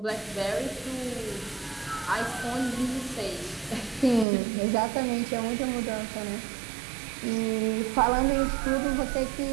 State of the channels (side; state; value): left; drops out; at 4.2 s